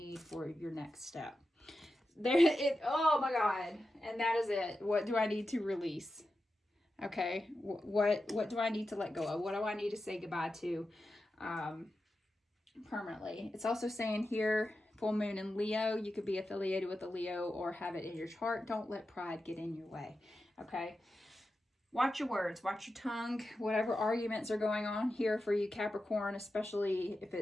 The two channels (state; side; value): normal; both; correlation 0.91